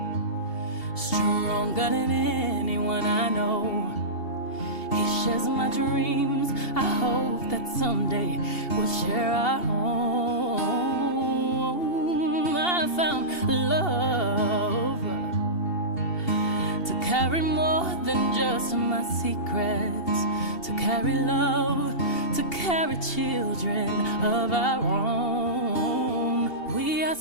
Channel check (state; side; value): late; right; 2.8 ms